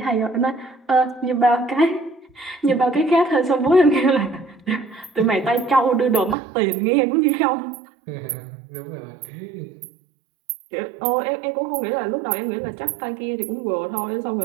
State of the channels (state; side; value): drops out; left; at 6.4 s